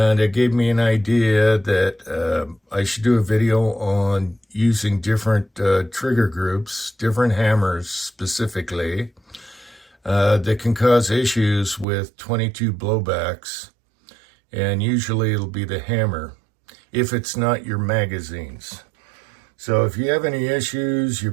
it gave me an idea that I should do a video on using different trigger groups, different hammers specifically, that can cause issues with 22 blowbacks, and usually it'll be the hammer if it's not your magazines. So if you have any issues, you're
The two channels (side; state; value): left; drops out; at 11.9 s